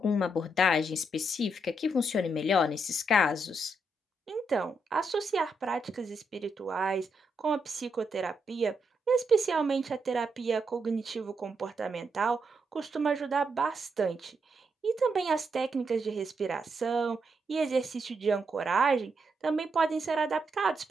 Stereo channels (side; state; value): both; normal; correlation 0.80